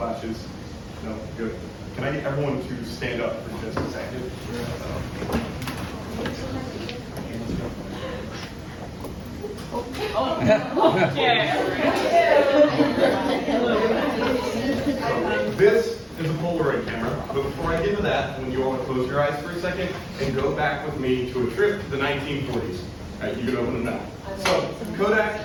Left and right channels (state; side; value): identical; both; correlation 1.00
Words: No, good. Can I get everyone to stand up for just a second? This is a Polaroid camera, but before I get into that, when you all close your eyes for a second and go back with me to a trip to the 1940s. All right, you can open them now. So,